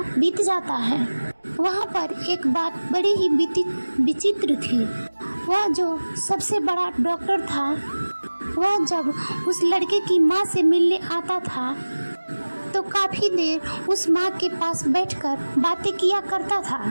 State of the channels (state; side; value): inverted; both; correlation -1.00